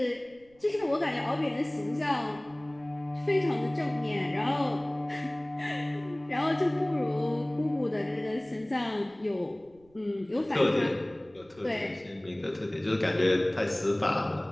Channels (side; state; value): right; noise; rumble, 30 dB below the sound